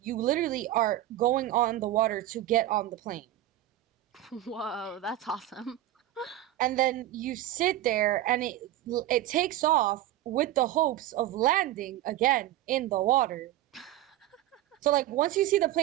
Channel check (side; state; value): left; quieter; 13.8 dB